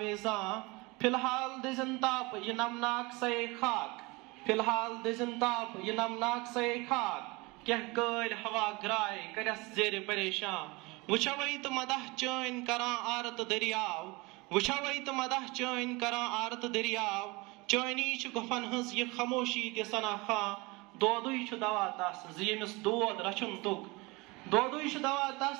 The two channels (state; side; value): quieter; left; 24.9 dB